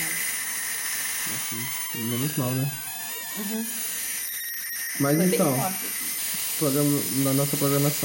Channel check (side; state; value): both; identical; correlation 1.00